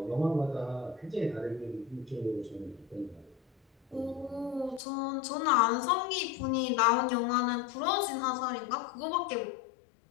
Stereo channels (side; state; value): right; drops out; at 4.8 s